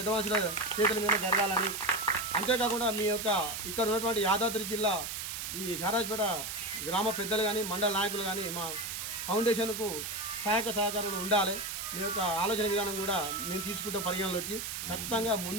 మనుషుల చేతుల మీద జరగాలని, అంతేకాకుండా మీ యొక్క ఇక్కడ ఉన్నటువంటి యాదాద్రి జిల్లా ఈ షారాజ్పేట గ్రామ పెద్దలు కానీ మండల నాయకులు కానీ మా ఫౌండేషన్కు సహకారాలు ఉండాలి. మీ యొక్క ఆలోచన విధానం కూడా మేము తీసుకుంటాం పరిగణలోకి. ఖచ్చితంగా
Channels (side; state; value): right; noise; hiss, 5 dB below the sound